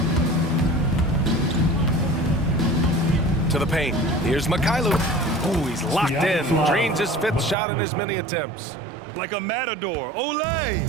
To the paint. Here's Mikhailuk. Ooh, he's locked in. Drains his 5th shot in as many attempts. Like a matador. Olay!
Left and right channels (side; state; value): left; drops out; at 7.6 s